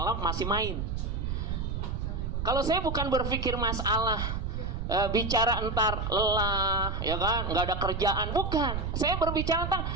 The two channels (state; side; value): noise; right; rumble, 2 dB below the sound